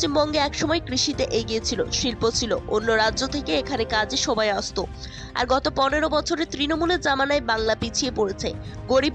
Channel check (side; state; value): both; identical; correlation 1.00